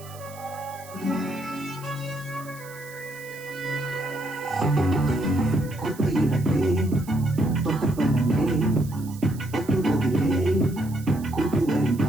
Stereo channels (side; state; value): right; noise; hiss, 20 dB below the sound